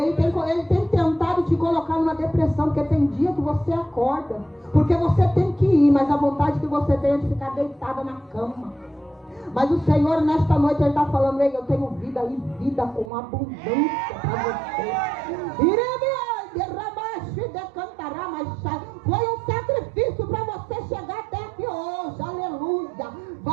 tem tentado te colocar numa depressão, porque tem dia que você acorda, porque você tem que ir, mas a vontade que você tem é de ficar deitada na cama. Mas o Senhor, nesta noite, ele está falando: ei, eu tenho vida e vida com abundância para você. Foi um sacrifício para você chegar até aqui hoje, aleluia.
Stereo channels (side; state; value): left; drops out; at 13.1 s